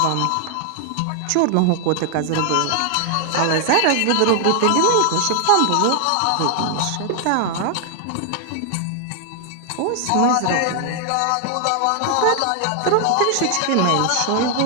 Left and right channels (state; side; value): different; both; correlation 0.00